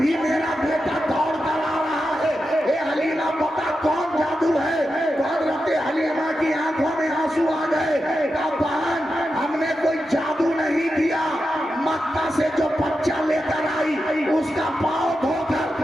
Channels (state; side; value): normal; both; correlation 0.89